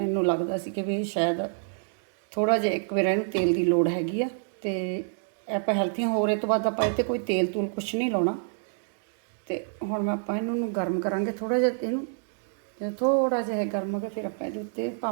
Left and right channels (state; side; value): silent; left; digital silence